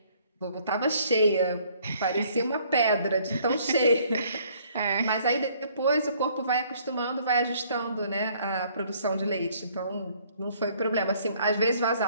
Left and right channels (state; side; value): inverted; both; correlation -0.61